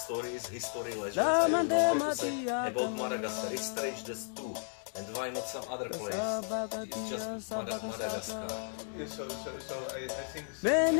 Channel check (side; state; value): right; silent; 55 dB below the other